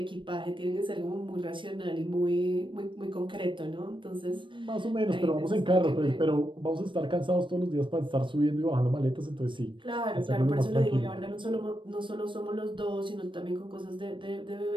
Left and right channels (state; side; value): late; left; 0.24 ms